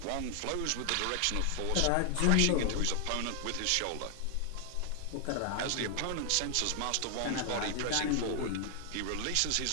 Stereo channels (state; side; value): different; both; correlation 0.00